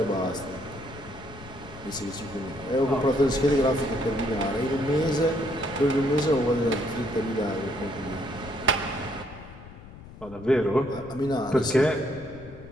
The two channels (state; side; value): noise; left; rumble, 17 dB below the sound